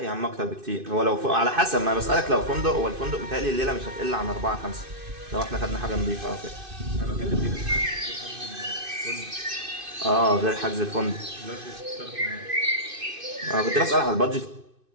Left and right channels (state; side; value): late; left; 2.5 ms